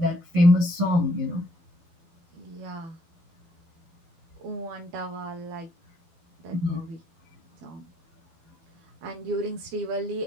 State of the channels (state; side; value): late; left; 12 ms